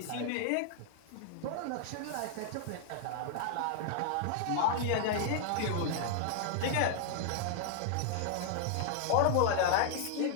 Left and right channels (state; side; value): different; both; correlation -0.01